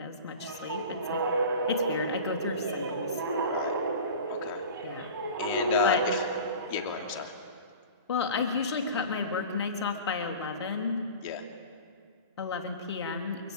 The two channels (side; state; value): both; inverted; correlation -0.36